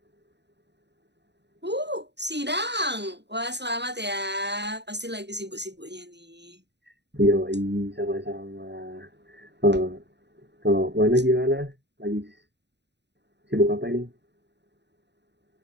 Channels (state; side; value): late; left; 0.50 ms